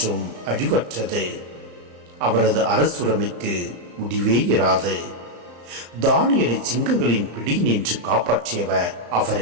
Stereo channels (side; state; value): left; late; 34 ms